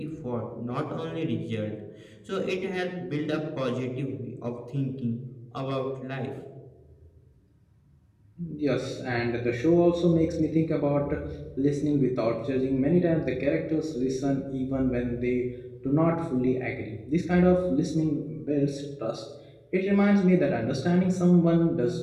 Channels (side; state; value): both; identical; correlation 1.00